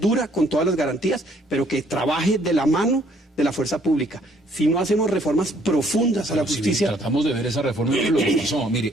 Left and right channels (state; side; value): normal; both; correlation 0.64